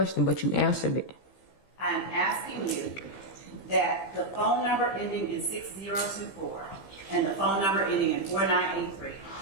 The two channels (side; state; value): right; late; 15 ms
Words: but you answered it. I'm asking you that the phone number ending in 6024 and the phone number ending in 4983